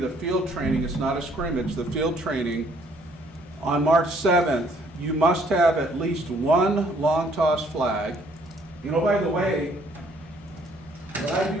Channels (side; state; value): right; noise; hum, 29 dB below the sound